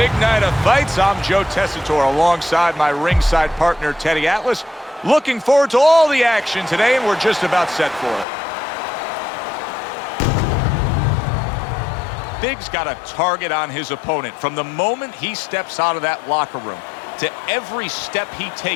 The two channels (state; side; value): drops out; right; at 8.2 s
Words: night of fights. I'm Joe Tessitore alongside my ringside partner, Teddy Atlas. Looking forward to all the action today, and we're just about set for it. Big's got a target on his opponent. From the moment he steps out of that locker room to every step he